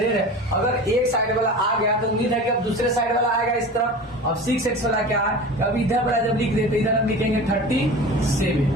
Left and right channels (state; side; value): normal; both; correlation 0.35